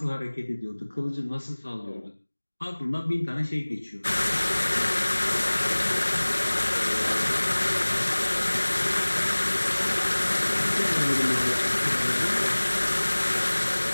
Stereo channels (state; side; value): inverted; both; correlation -1.00